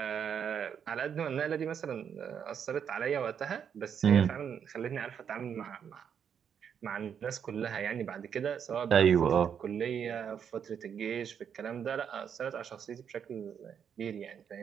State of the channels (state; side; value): quieter; left; 7.8 dB